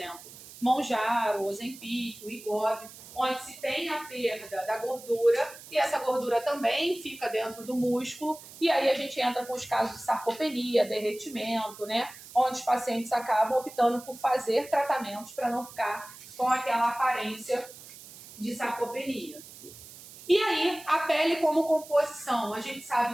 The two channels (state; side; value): noise; right; hiss, 17 dB below the sound